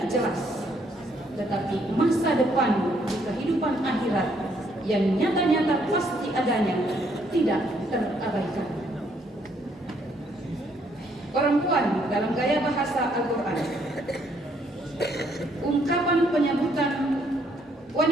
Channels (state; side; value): normal; both; correlation 0.69